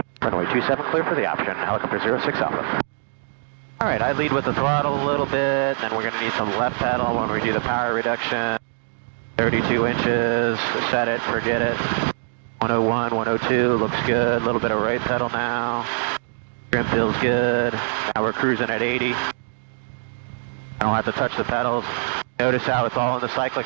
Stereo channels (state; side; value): silent; left; digital silence